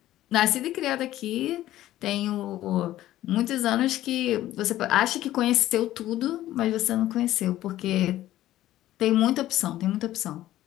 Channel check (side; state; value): right; quieter; 14.2 dB